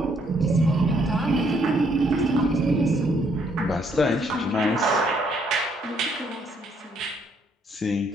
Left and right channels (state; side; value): normal; both; correlation 0.69